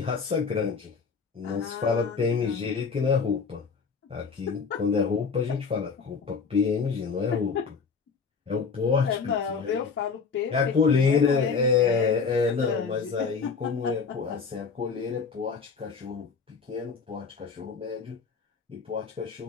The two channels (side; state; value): right; quieter; 5.4 dB